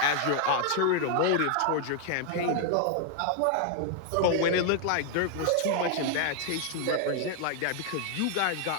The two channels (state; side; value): different; both; correlation 0.00